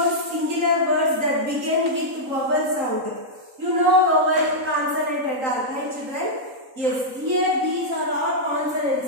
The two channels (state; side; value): late; left; 3.8 ms